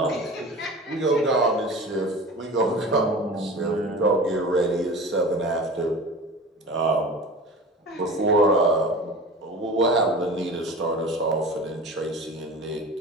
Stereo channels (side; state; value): both; normal; correlation 0.36